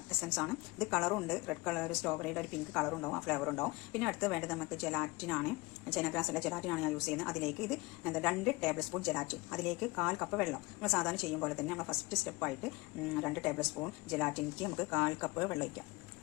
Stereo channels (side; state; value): right; quieter; 23.3 dB